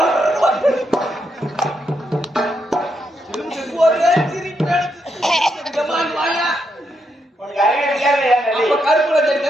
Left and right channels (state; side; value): normal; both; correlation 0.80